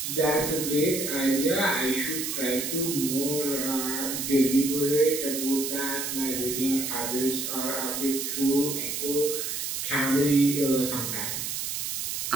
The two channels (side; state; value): right; noise; hiss, 3 dB below the sound